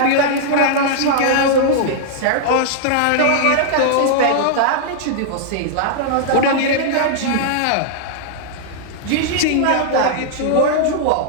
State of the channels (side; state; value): both; different; correlation -0.01